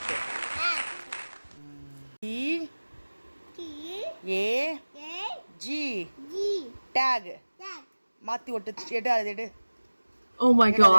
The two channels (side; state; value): both; inverted; correlation -1.00